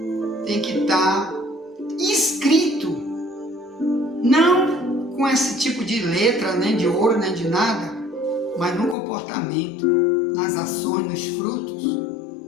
tem que estar escrito, não com esse tipo de letra, nem de ouro, nem de nada, mas no comportamento, nas ações, nos frutos,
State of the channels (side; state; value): right; drops out; at 9.0 s